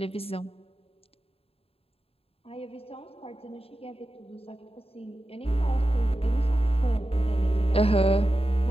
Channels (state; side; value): late; right; 0.28 ms